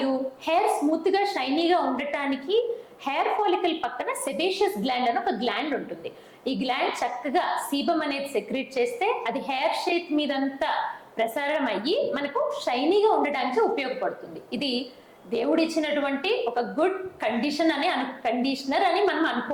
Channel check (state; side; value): identical; both; correlation 1.00